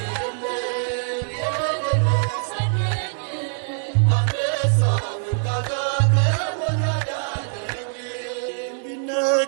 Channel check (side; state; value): left; silent; 63 dB below the other